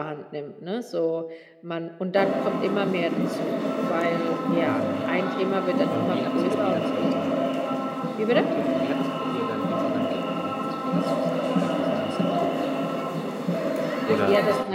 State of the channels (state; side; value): identical; both; correlation 1.00